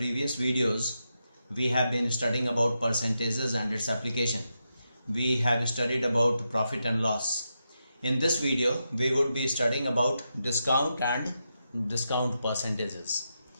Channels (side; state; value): both; inverted; correlation -0.86